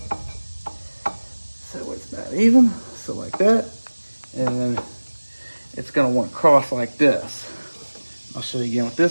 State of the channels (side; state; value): both; inverted; correlation -1.00